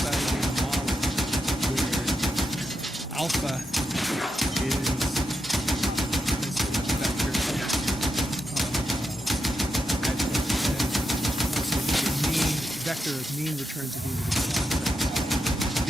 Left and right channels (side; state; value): both; normal; correlation 0.85